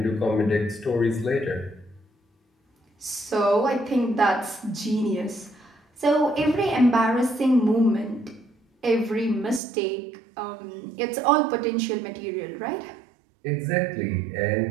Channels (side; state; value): left; drops out; at 9.6 s